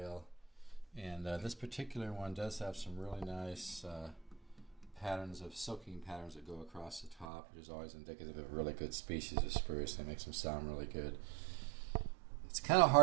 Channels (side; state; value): left; drops out; at 7.2 s